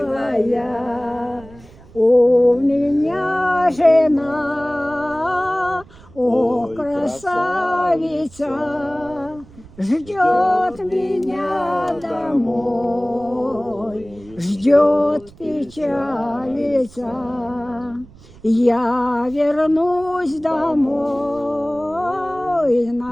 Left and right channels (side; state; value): right; noise; rumble, 22 dB below the sound